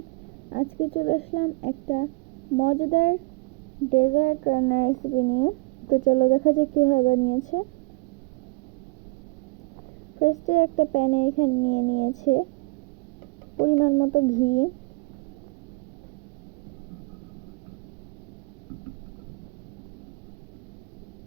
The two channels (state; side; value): quieter; left; 26.5 dB